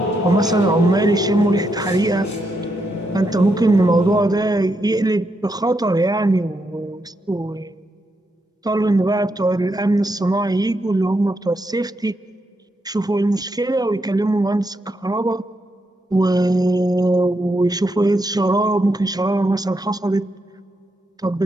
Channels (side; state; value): both; normal; correlation 0.81